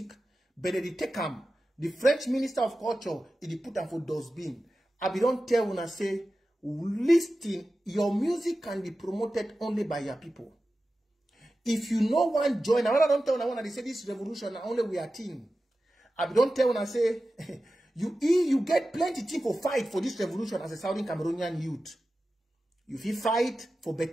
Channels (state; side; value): normal; both; correlation 0.94